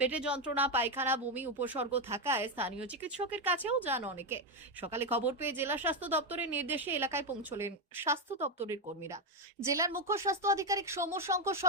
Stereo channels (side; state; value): both; normal; correlation 0.07